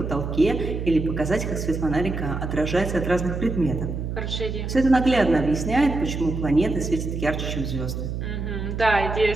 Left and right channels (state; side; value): noise; right; hum, 4 dB below the sound